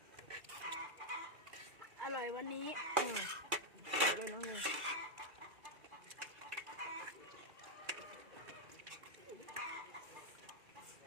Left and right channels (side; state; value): left; late; 2.3 ms